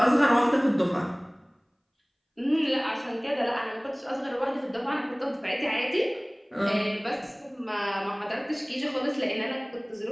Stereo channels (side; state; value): both; identical; correlation 1.00